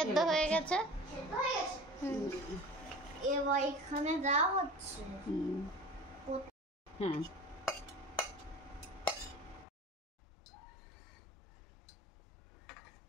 ঢেলে হয়ে গেছে। সেদ্ধ হয়ে গেছে? এবার এখানে দেওয়া হচ্ছে। হ্যাঁ,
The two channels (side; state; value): right; drops out; at 9.7 s